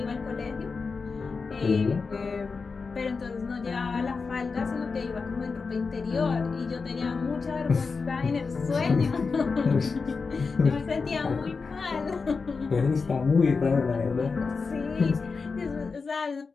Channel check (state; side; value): quieter; right; 4.7 dB